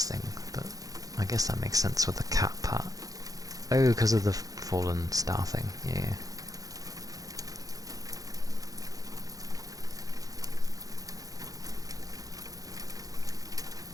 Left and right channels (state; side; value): late; left; 0.17 ms